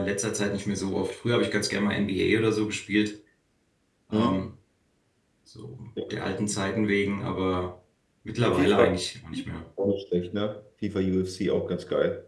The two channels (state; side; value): identical; both; correlation 1.00